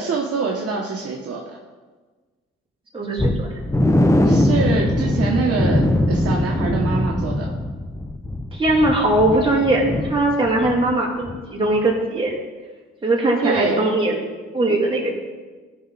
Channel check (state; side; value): normal; both; correlation 0.61